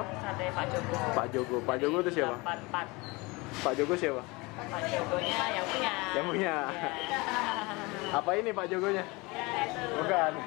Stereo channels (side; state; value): right; quieter; 24.8 dB